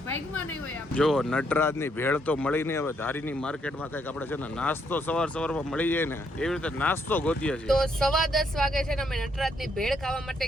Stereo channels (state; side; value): normal; both; correlation 0.73